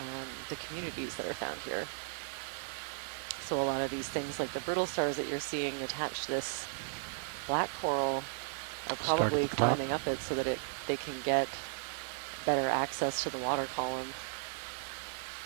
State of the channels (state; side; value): silent; left; digital silence